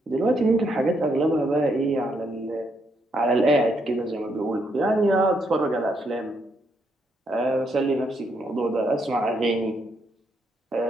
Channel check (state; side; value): normal; both; correlation 0.76